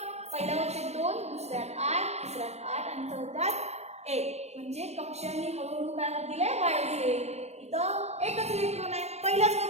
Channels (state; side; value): late; left; 0.31 ms